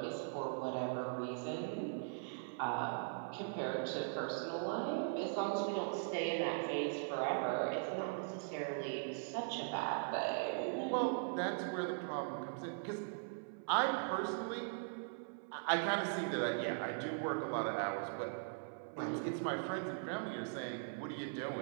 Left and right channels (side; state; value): left; silent; 51 dB below the other